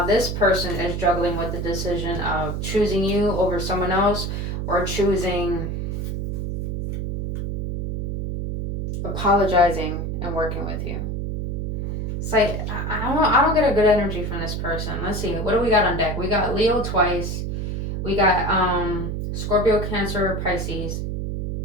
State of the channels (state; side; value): noise; right; hum, 3 dB below the sound